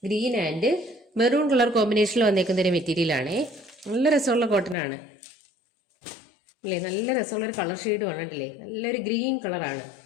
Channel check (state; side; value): drops out; right; at 4.8 s